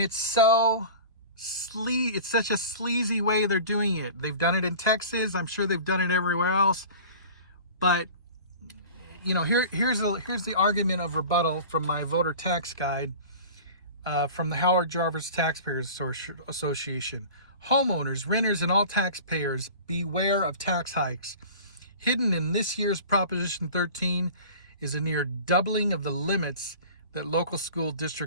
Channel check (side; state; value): both; inverted; correlation -0.39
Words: such a sleazy way they're doing it. They've done it in Texas. I'm sure they've done it everywhere else. But here's the argument of rebuttal from my voter tax guide from the Howard Jarvis Taxpayers Association. Homeowners, renters, and all taxpayers, beware of tax hikes. Hidden in this year's Proposition 13 is a near doubling of the limits that local school